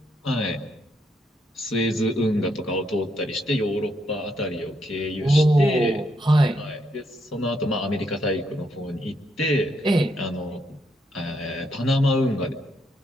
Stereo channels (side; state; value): both; normal; correlation 0.77